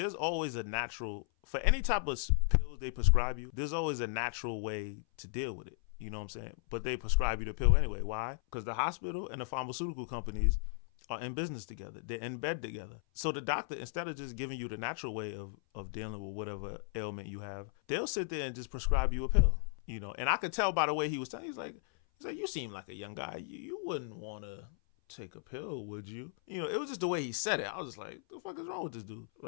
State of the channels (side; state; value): right; silent; 54 dB below the other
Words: always a natural, for any type of pills they prescribe you, there's always a natural way to deal with it. You know what I'm saying? But they prescribe you the pill anyway. Why? Because the hospital and the pharmaceutical companies are in business together. They're in bed together. So the doctor, instead of just giving you the natural way of dealing with whatever ailment you have, they'll sit there and just prescribe you a pill. You know, and I could tell by the way he was telling, he's like, you seem like a young guy. You wouldn't want to take a pill, would you? You know, it was just the way he said it. I was just like, the fuck is wrong with this dude?